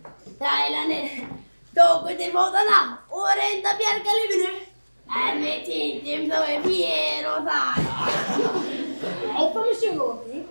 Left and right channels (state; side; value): inverted; both; correlation -1.00